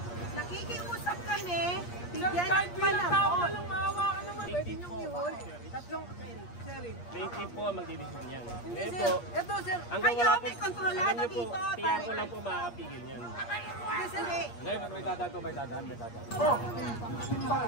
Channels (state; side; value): late; right; 8.5 ms